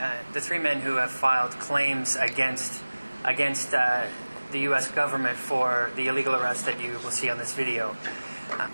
men who have filed claims against the U.S. government for the illegal arrest that you will see on this video.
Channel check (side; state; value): both; inverted; correlation -1.00